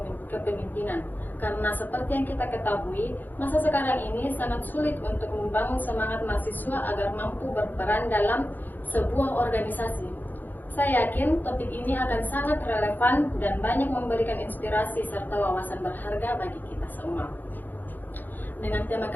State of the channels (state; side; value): late; right; 0.087 ms